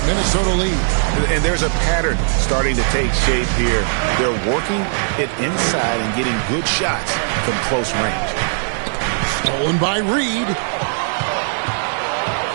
Minnesota lead. And there's a pattern starting to take shape here. They're working it inside and getting good shots from close range. Stolen by Reed.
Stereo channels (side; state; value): left; silent; 62 dB below the other